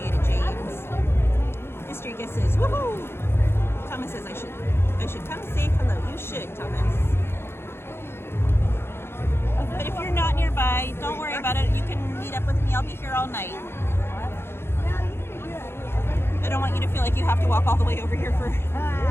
it, James. Mystery guesses, woohoo! Thomas says I should come say hello. You should, Thomas. But if you're not nearby, don't worry about it. You can meet up with me. I'll be here all night. I don't want you to feel like you have to walk all the way over here for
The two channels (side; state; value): right; late; 0.12 ms